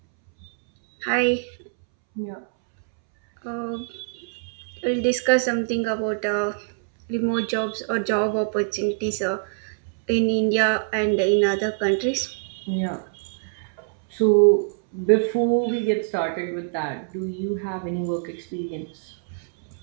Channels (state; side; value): silent; left; 62 dB below the other